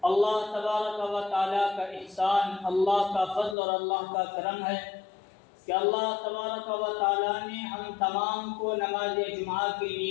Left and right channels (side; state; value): right; drops out; at 3.6 s